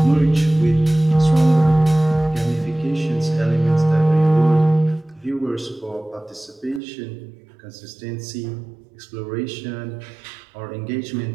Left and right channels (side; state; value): left; drops out; at 6.8 s